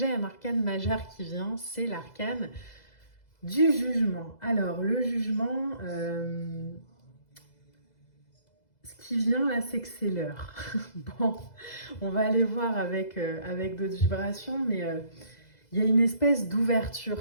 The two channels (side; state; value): right; late; 2.0 ms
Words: un arcane majeur qui vient, c'est l'arcane du jugement. Alors, le jugement, ce qui vient là, c'est que c'est l'heure. Bon, on va aller voir avec d'autres vibrations, mais il y a une espèce